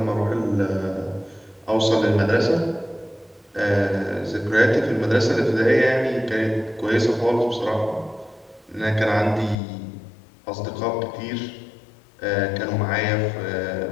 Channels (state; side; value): drops out; right; at 9.6 s